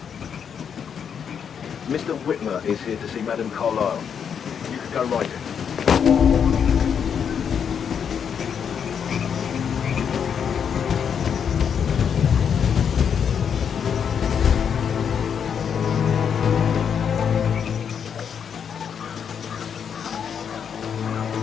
Mr. Whitmer is here to see Madame Carlyle. You can go right in.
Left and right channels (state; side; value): quieter; right; 7.5 dB